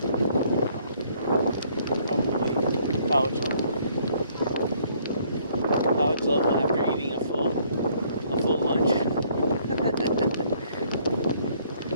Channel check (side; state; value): both; inverted; correlation -0.64